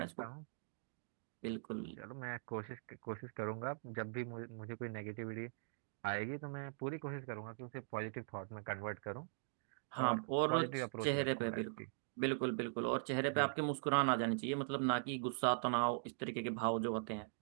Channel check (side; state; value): left; silent; digital silence